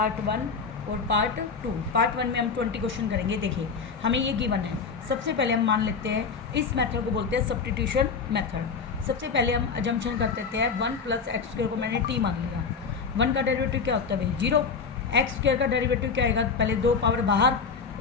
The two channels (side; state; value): right; quieter; 5.4 dB